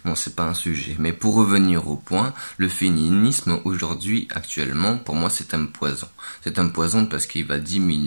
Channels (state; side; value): inverted; both; correlation -1.00